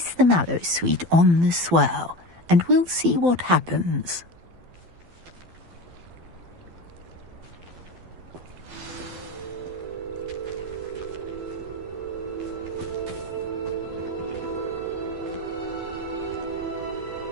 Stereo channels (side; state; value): left; late; 12 ms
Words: the Mallowsweet on the swell, and we'll see what happens.